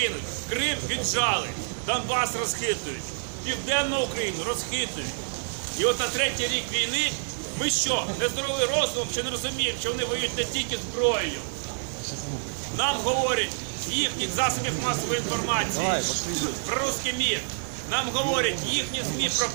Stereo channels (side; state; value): left; silent; digital silence